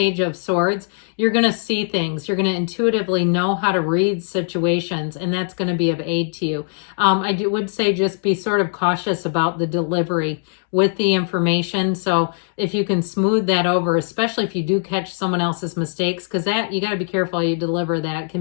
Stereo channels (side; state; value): right; silent; digital silence